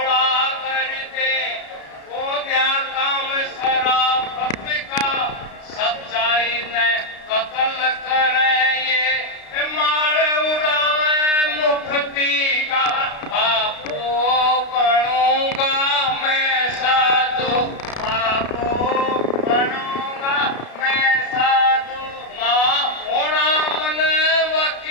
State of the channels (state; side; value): late; right; 33 ms